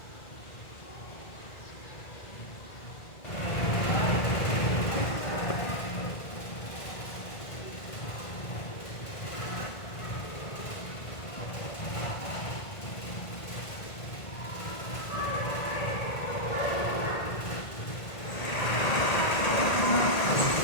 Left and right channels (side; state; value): right; late; 1.8 ms